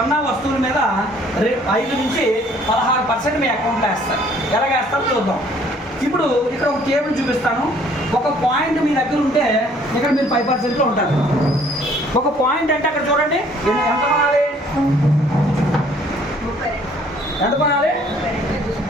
వస్తువుల మీద 5 నుంచి 16% మీ అకౌంట్లో వేస్తారు. ఎలాగ వేస్తారో చూద్దాం. ఇప్పుడు ఇక్కడ ఒక టేబుల్ చూపిస్తాను. ఒక పాయింట్ మీ దగ్గర ఉంటే ఇక్కడ మీరు 5%లో ఉంటారు. ఒక పాయింట్ అంటే అక్కడ చూడండి ఎంత కొనాలి, ఎంత కొనాలి,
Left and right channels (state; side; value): normal; both; correlation 0.59